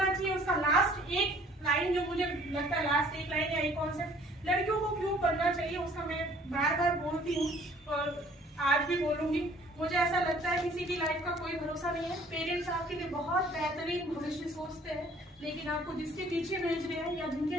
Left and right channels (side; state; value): both; normal; correlation 0.55